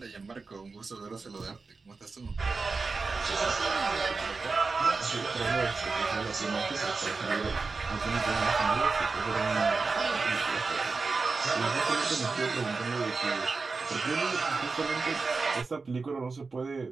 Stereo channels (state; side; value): quieter; left; 4.3 dB